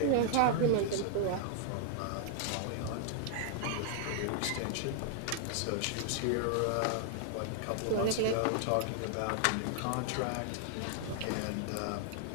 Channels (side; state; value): both; different; correlation 0.00